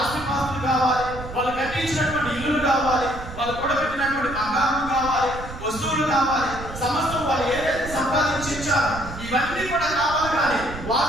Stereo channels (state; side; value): noise; right; rumble, 11 dB below the sound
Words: కావాలి, వాళ్ళు కట్టించినటువంటి ఇల్లులు కావాలి, వాళ్ళు కూడబెట్టినటువంటి బంగారం కావాలి, వస్తువులు కావాలి, సమస్తం వాళ్ళు ఏదైతే సంపాదించి ఇచ్చారో ఇవన్నీ కూడా కావాలి. కానీ